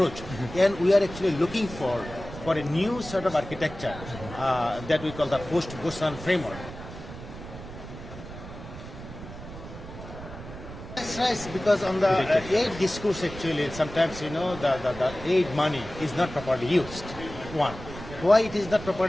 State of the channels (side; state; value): right; noise; rumble, 12 dB below the sound